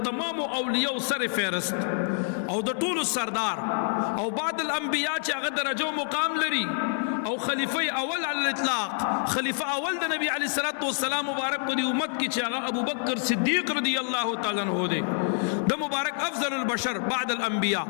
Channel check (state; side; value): silent; right; 60 dB below the other